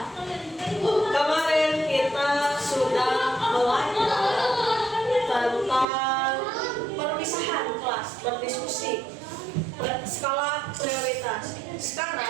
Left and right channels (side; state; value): left; drops out; at 5.9 s